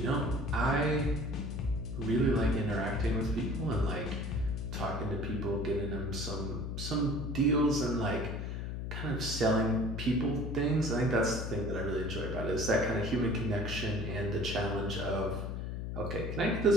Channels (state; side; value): noise; left; hum, 4 dB below the sound